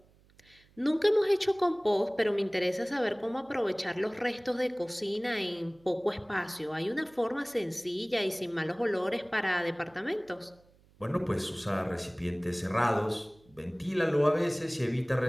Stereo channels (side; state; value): right; noise; hum, 30 dB below the sound